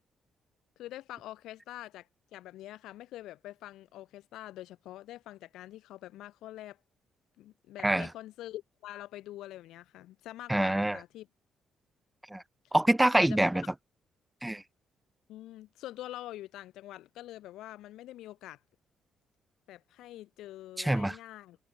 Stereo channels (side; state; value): both; normal; correlation 0.96